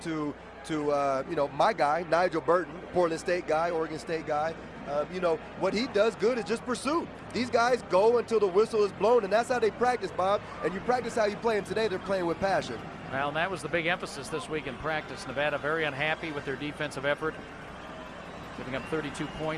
to my guy, Nigel Burton, Portland State guy, Oregon State guy, what he does good is just pursue. These guys go until the whistle is blown, and that's how they practice, Bob. And you practice how you play, and today they're playing with passion. Well, and that was the big emphasis this week in practice. Nevada very unhappy with their defensive effort, giving up 32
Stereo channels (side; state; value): both; identical; correlation 1.00